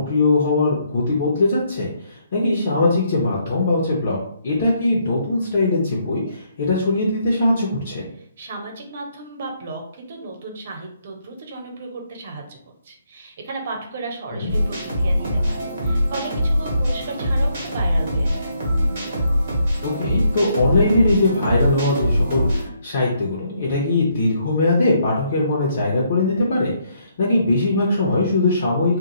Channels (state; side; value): inverted; both; correlation -0.73